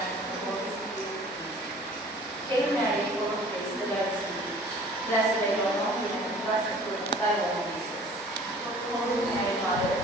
Hail Mary, full of grace, the Lord is with thee. Blessed are you among women, and blessed the fruit of thy womb, Jesus. Holy Mary, Mother of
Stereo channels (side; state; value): both; normal; correlation 0.49